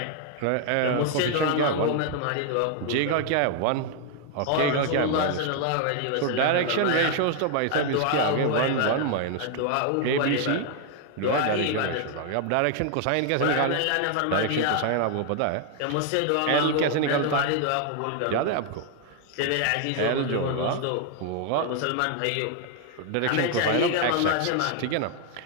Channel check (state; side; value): different; both; correlation 0.00